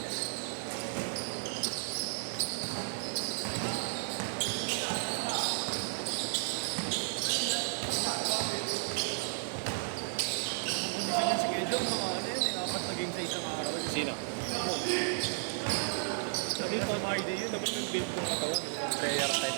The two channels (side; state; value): left; silent; 55 dB below the other